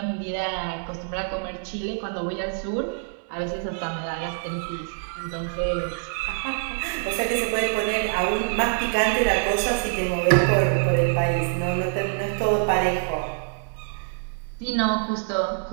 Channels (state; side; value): silent; left; digital silence